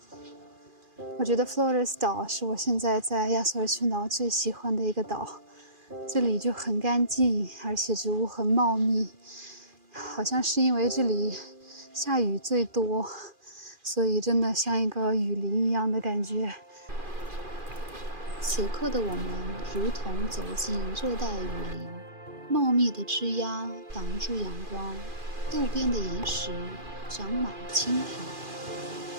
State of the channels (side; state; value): left; late; 2.4 ms